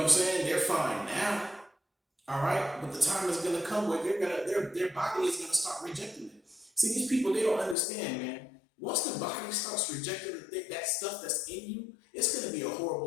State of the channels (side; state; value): right; drops out; at 7.8 s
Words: I'm saying? They're fine now. All right, but the time is gonna come where their body is gonna start rejecting it. See, these people, they don't understand, man. Once the body starts rejecting that stuff that's in you, it's gonna be a